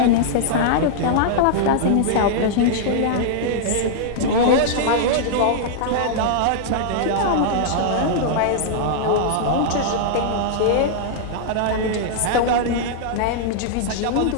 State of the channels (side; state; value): both; different; correlation -0.01